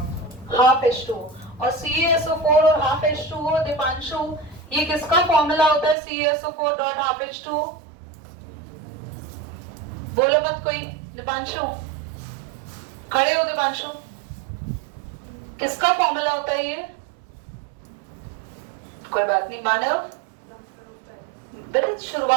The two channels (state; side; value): drops out; left; at 6.0 s